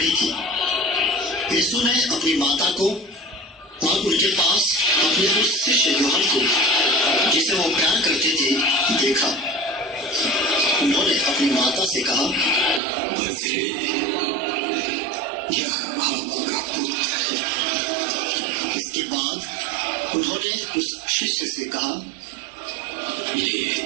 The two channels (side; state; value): left; drops out; at 12.8 s